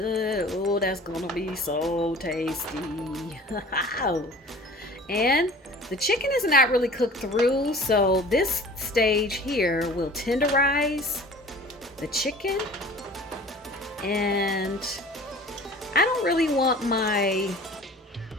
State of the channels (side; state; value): both; normal; correlation 0.44